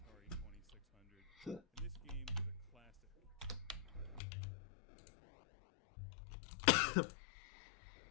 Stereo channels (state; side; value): drops out; right; at 4.2 s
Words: 2600. And this game is a classic.